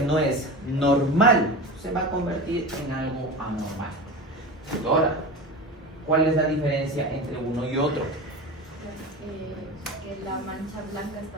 no es normal se va a convertir en algo anormal. Ahora, ¿cuál es la diferencia entre uno y otro? Que la mancha blanca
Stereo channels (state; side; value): normal; both; correlation 0.28